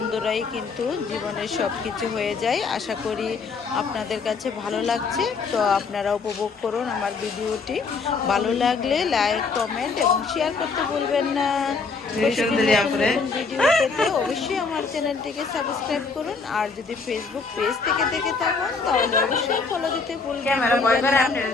কিন্তু জীবনের সব কিছু হয়ে যায়। আশা করি আপনাদের কাছে ভালো লাগছে। তো আপনারা উপভোগ করুন আমার ভিডিওটি। ভালো লাগলে লাইক, কমেন্ট এবং শেয়ার করতে ভুলবেন না। ভিডিও পেতে অবশ্যই আমার চ্যানেলটিকে সাবস্ক্রাইব করুন। আর যদি ফেসবুক পেজ থেকে দেখে থাকুন তাহলে অবশ্যই ফলো দিতে ভুলবেন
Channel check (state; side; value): quieter; right; 4.6 dB